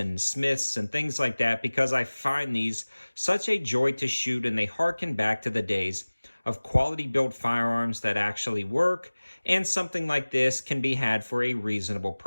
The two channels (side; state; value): both; inverted; correlation -1.00